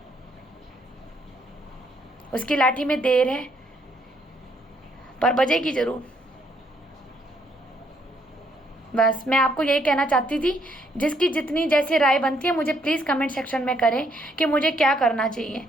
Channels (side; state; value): both; normal; correlation 0.71